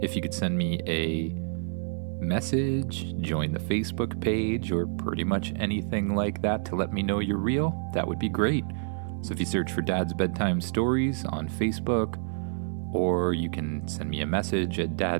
If you could send me a message, join the Facebook page, or pretty much anything like that to let me know you're real, that would be great. So if you search for Dad's Bedtime Stories on Facebook, or you can send me a message at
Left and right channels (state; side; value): silent; left; digital silence